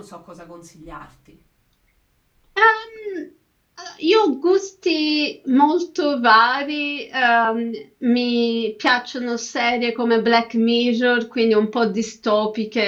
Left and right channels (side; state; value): both; identical; correlation 1.00